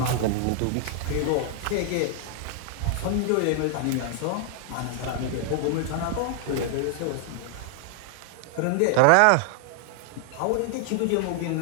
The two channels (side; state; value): both; different; correlation 0.00